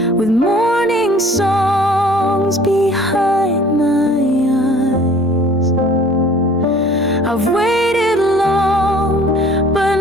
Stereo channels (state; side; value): normal; both; correlation 0.50